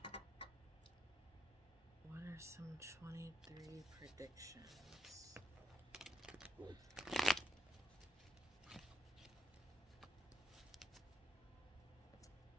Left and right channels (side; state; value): both; normal; correlation 0.81